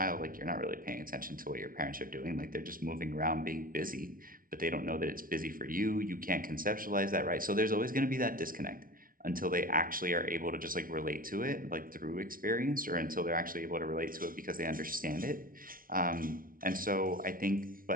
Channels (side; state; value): left; late; 0.41 ms